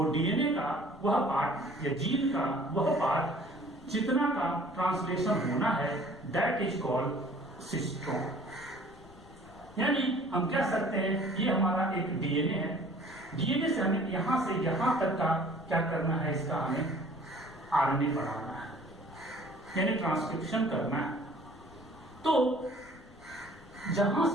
डीएनए का वह पार्ट या जीन का वह पार्ट जितना का ट्रांसलेशन होना है दैट इज कॉल्ड सिस्ट्रॉन। यानी हम कह सकते हैं ये हमारा एक डीएनए है, डीएनए से हमें यहां से यहां तक का क्या करना है, इसका हमें आरएनए बनाना है, यानी ट्रांसक्रिप्शन करना है। तो जहां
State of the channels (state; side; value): noise; left; rumble, 22 dB below the sound